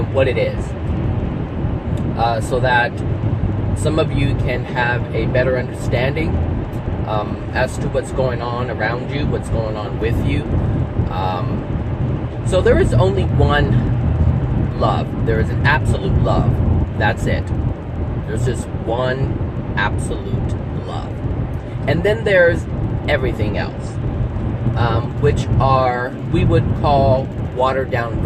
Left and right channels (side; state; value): both; identical; correlation 1.00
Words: what it is, so that some of you can have a better understanding as to what's going on around you, what's going on with you. So there is only one love. There is an absolute love. That's it. There's just one absolute love. And then there's everything else, which are, we would call watered down